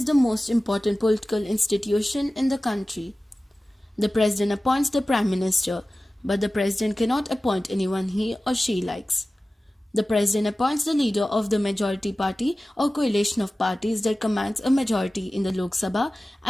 the most important political institution in the country. The President appoints the Prime Minister, but the President cannot appoint anyone he or she likes. The President appoints the leader of the majority party or coalition of parties that commands a majority in the Lok Sabha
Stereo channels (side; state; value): both; normal; correlation 0.96